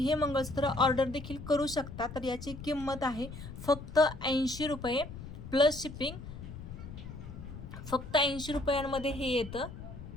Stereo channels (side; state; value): left; noise; rumble, 11 dB below the sound